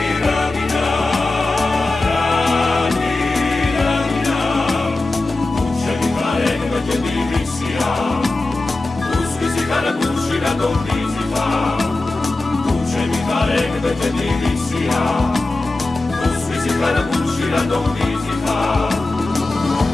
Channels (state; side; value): quieter; right; 3.1 dB